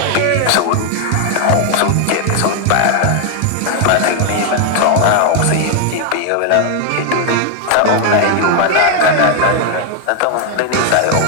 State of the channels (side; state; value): both; different; correlation 0.00